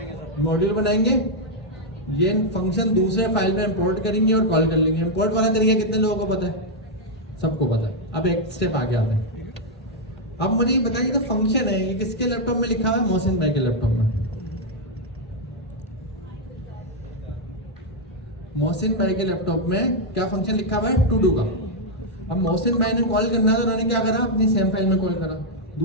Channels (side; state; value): both; normal; correlation -0.02